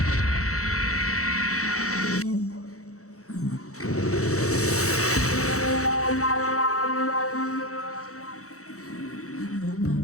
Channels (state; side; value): late; right; 0.65 ms